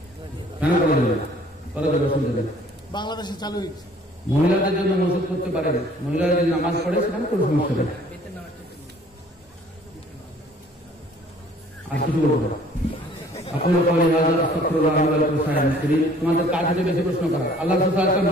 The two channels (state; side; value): normal; both; correlation 0.55